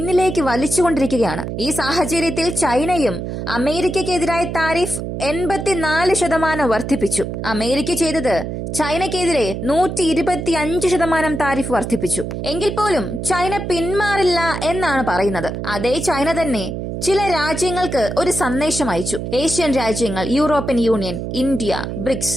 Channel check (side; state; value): right; noise; hum, 5 dB below the sound